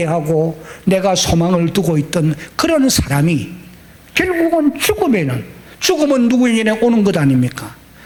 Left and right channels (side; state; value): both; identical; correlation 1.00